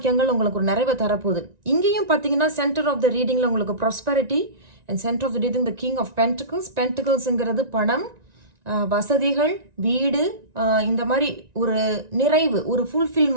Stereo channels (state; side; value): late; left; 1.9 ms